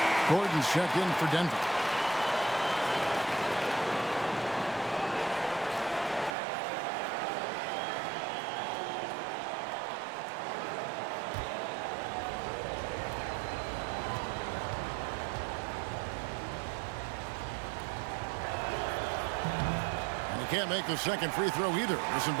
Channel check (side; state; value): left; drops out; at 6.4 s